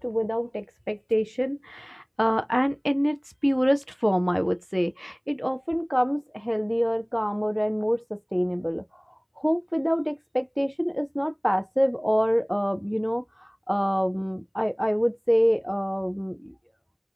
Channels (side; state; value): both; identical; correlation 1.00